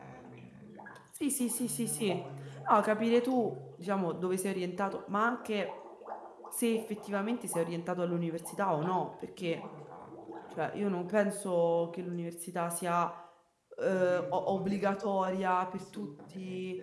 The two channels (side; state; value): both; identical; correlation 1.00